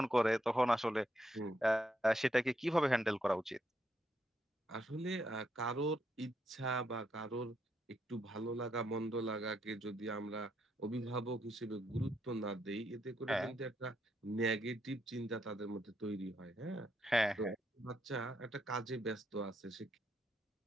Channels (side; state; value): both; normal; correlation 0.78